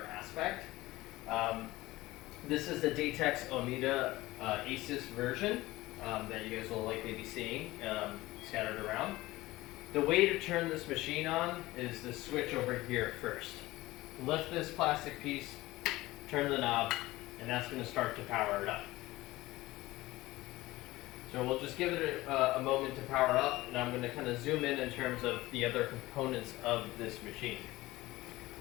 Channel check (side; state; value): right; quieter; 18.6 dB